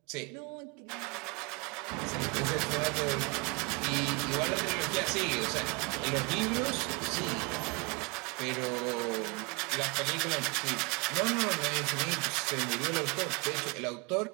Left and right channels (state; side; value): quieter; left; 29.8 dB